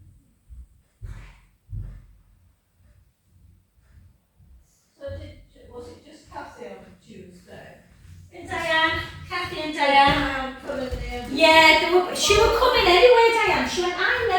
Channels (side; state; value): both; identical; correlation 1.00